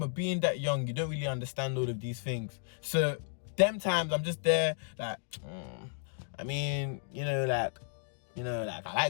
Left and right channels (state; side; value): silent; right; digital silence